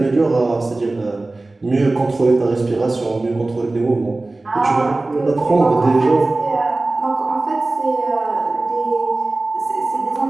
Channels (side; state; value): left; quieter; 3.1 dB